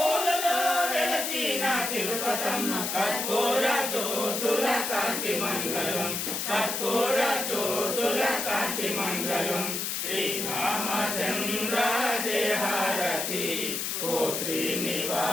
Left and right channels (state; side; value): noise; left; hiss, 2 dB below the sound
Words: వెలసిన తిరుపతమ్మ కర్పూర జ్యోతుల కాంతి మంగళం కర్పూర జ్యోతుల కాంతి మంగళం శ్రీరామచంద్ర జయ భారతి ఓ